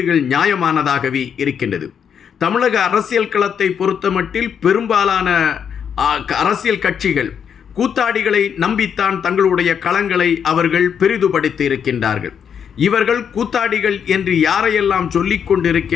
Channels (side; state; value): right; quieter; 7.7 dB